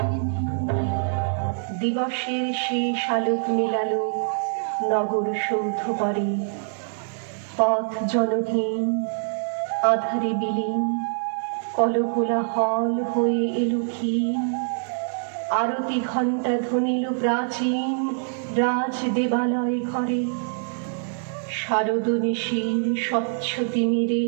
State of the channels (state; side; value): silent; left; 60 dB below the other